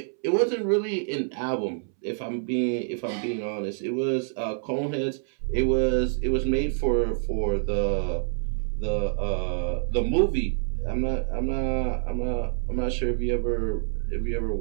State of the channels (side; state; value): left; silent; 60 dB below the other